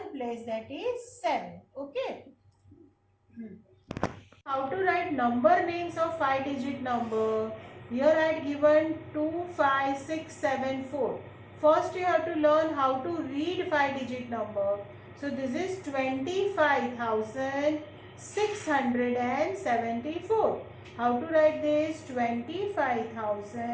place, that is 7. Okay. How to write number names of 5-digit number? Here I had given 2, 5, 6, 7, 4. First you have to learn how to read 5-digit number. So this is 25,674. How to write this?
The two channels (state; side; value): identical; both; correlation 1.00